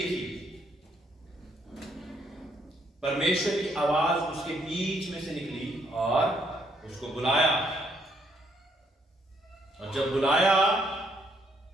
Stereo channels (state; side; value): normal; both; correlation 0.71